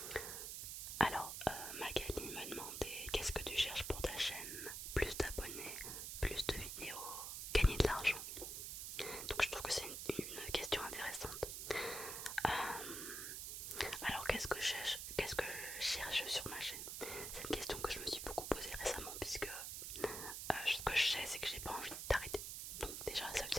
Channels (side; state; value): right; noise; hiss, 5 dB below the sound